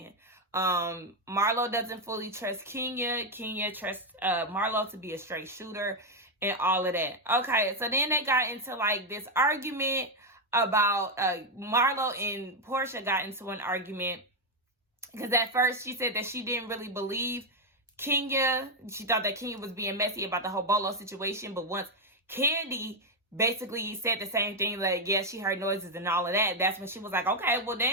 Marlo doesn't fully trust Kenya. Kenya trusts Marlo to be a straight shooter. and all of that. Okay, so then they got into like this argument about Marlo and Portia got into an argument because at first she said that she didn't really believe Kenya. She thought that Kenya was being messy about the whole Bolo situation, but once Kandi basically said the same thing, like, yeah, she heard noises and all of that, that's when she was like, okay, well,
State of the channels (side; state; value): both; normal; correlation 0.03